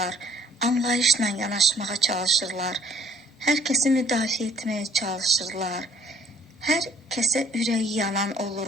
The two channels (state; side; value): normal; both; correlation 0.60